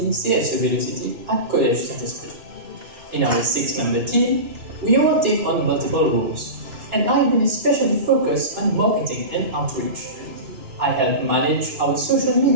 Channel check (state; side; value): late; left; 3.0 ms